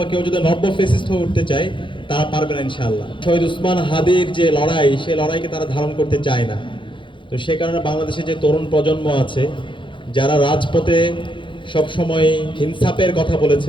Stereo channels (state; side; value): late; right; 0.24 ms